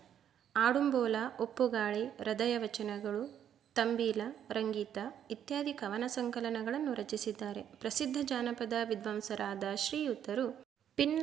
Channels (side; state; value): left; quieter; 9.5 dB